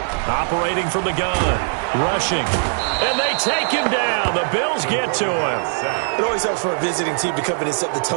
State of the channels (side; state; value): left; silent; digital silence